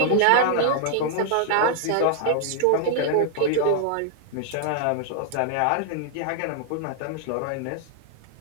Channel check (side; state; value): both; different; correlation 0.00